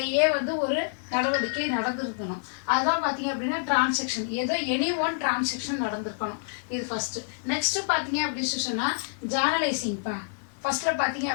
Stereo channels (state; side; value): silent; right; digital silence